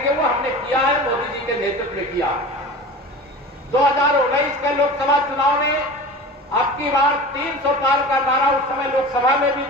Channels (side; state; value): both; normal; correlation 0.35